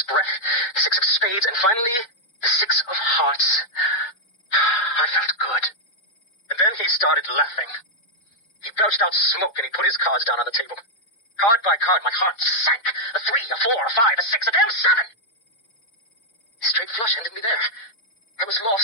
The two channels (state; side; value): late; right; 4.6 ms